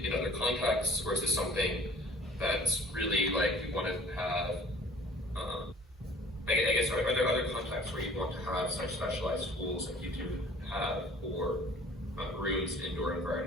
other contexts, or is this something that's really like you want to have? I guess are there other contexts where you want to have such specialized tools like you do have for rooms, indoor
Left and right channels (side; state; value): both; normal; correlation 0.50